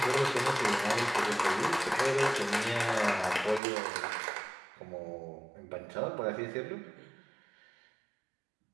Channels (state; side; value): drops out; left; at 3.6 s